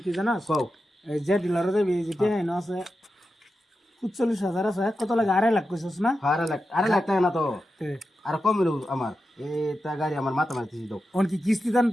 কি জানাস কও এই যে ডিলারে যাবি যে টিয়া হ্যাঁ আছে ৪৫,০০০ আছে কত লাগে ২.৫ লাখ কইছিস না আরে লাখ টাকা না তো তে আর কম মিলো আমার তা গাড়ি আমার মাথা মারতে দাও অন কি কিস্তি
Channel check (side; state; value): both; normal; correlation 0.90